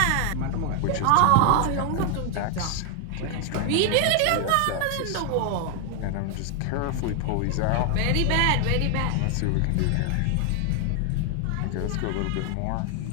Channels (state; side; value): different; both; correlation 0.00